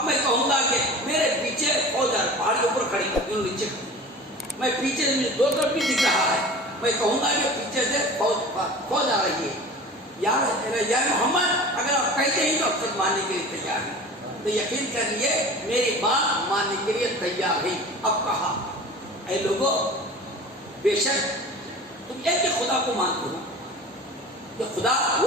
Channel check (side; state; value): both; normal; correlation 0.39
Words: میں کہوں گا کہ میرے پیچھے فوج ہے, پہاڑ کے اوپر کھڑی کر نیچے, میں پیچھے دو طرف بھی دکھ رہا ہے. میں کہوں گا کہ پیچھے سے فوج آ رہی ہے. یا محمد اگر آپ کہتے ہیں تو اب تک ماننے کے لیے تیار ہیں, تو یقین کر لیے میری بات ماننے کے لیے تیار ہے. اب کہا اے لوگوں بے شک تم ایک کہ خدا کو مانتے ہو, کہ خدا